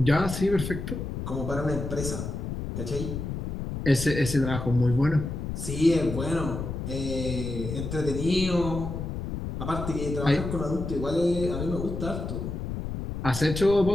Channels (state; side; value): noise; left; rumble, 5 dB below the sound